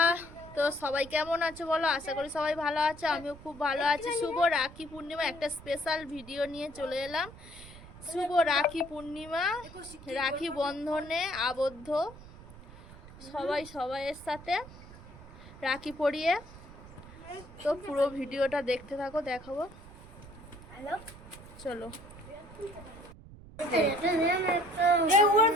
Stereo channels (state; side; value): noise; right; rumble, 18 dB below the sound